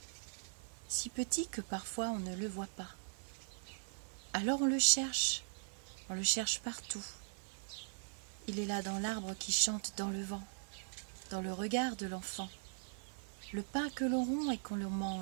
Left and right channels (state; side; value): silent; left; digital silence